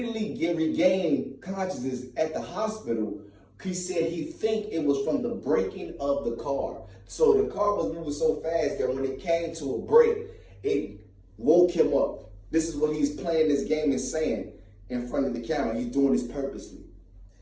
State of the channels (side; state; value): both; identical; correlation 1.00